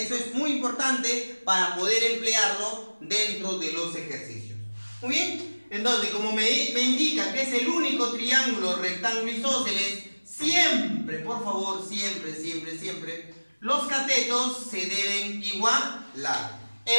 eso es muy importante para poder emplearlo dentro de los ejercicios. Muy bien, entonces, como me indica que es el único triángulo rectángulo isósceles, siempre, por por favor, siempre, siempre, siempre, los catetos se deben igualar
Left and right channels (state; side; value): inverted; both; correlation -1.00